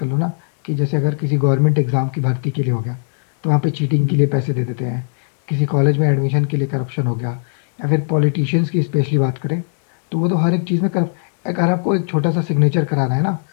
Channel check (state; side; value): silent; right; digital silence